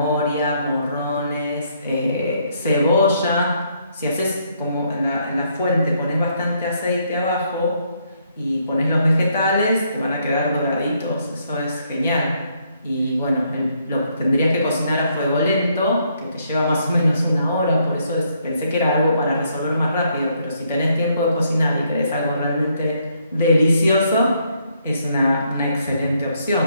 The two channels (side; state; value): both; inverted; correlation -0.72